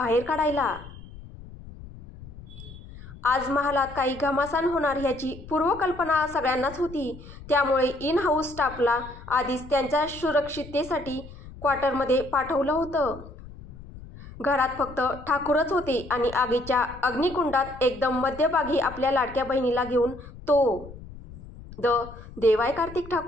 काढायला. आज महालात काही घमासान होणार ह्याची पूर्वकल्पना सगळ्यांनाच होती. त्यामुळे इन हाऊस स्टाफला आधीच त्यांच्या सुरक्षिततेसाठी क्वार्टरमध्ये पाठवलं होतं. घरात फक्त ठाकूरच होते आणि आगीच्या अग्निकुंडात एकदम मध्यभागी आपल्या लाडक्या बहिणीला घेऊन तो देवाय कार्तिक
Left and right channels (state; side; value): noise; left; rumble, 16 dB below the sound